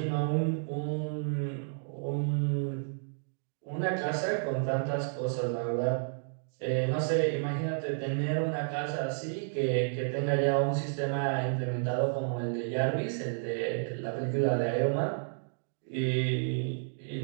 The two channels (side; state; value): left; silent; digital silence